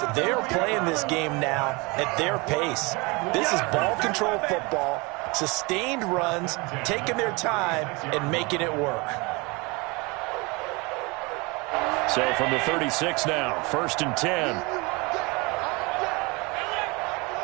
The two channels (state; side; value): quieter; left; 26.8 dB